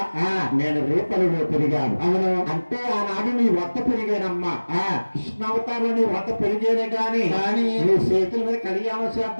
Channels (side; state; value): both; inverted; correlation -1.00